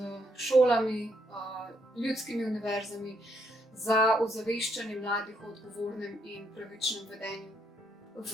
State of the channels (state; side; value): normal; both; correlation 0.74